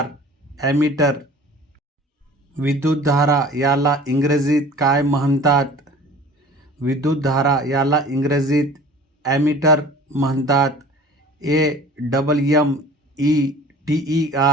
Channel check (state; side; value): normal; both; correlation 0.45